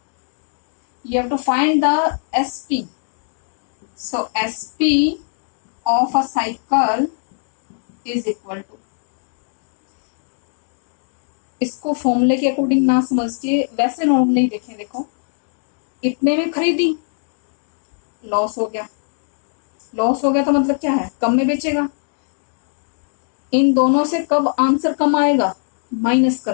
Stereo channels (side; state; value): right; silent; digital silence